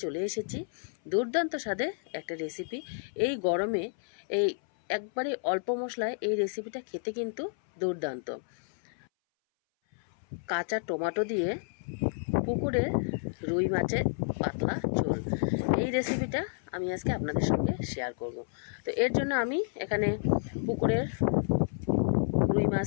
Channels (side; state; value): right; silent; 57 dB below the other